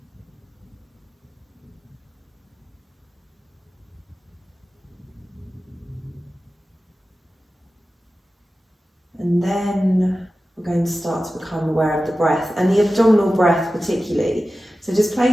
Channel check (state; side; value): normal; both; correlation 0.94